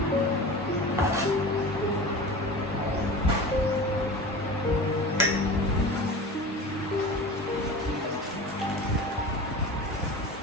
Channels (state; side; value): normal; both; correlation 0.34